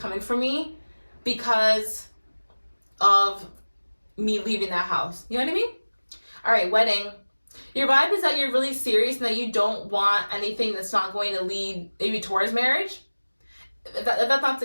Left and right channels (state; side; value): inverted; both; correlation -1.00